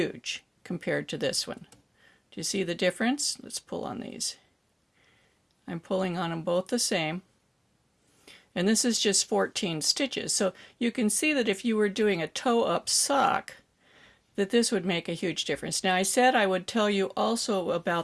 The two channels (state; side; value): identical; both; correlation 1.00